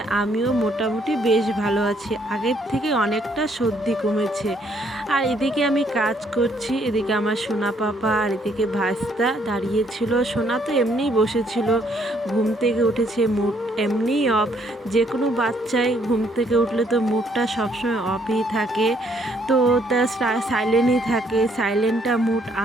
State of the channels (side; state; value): both; normal; correlation 0.68